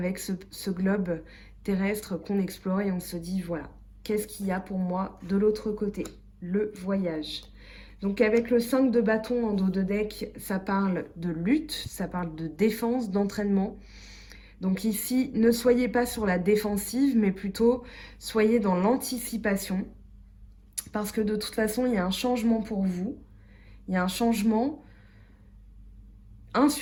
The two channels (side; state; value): both; identical; correlation 1.00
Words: ce globe terrestre qu'on explore et on se dit voilà, qu'est-ce qu'il y a pour moi de l'autre côté? Le voyage. Donc avec le 5 de bâton en dos de deck, ça parle de lutte, ça parle de défense, d'entraînement. Donc ici, ne soyez pas sur la défensive, mais plutôt soyez dans l'anticipation. Parce que de toute façon, il y a un changement pour vous. Il y a un changement, un